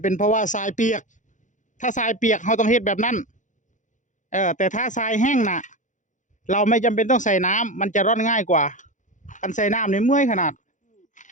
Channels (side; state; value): right; late; 0.36 ms